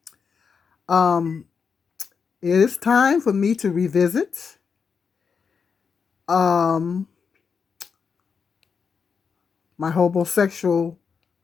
Um, it is time for me to revisit um my homosexual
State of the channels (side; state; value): right; quieter; 5.9 dB